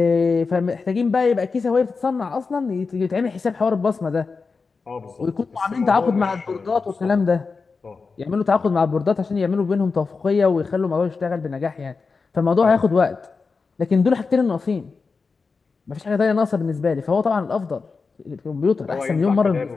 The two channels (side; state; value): right; quieter; 4.6 dB